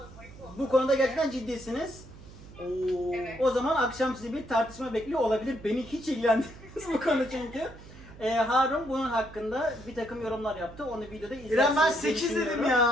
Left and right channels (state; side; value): noise; right; hum, 18 dB below the sound